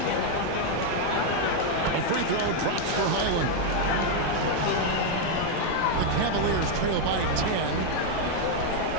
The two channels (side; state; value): both; different; correlation 0.01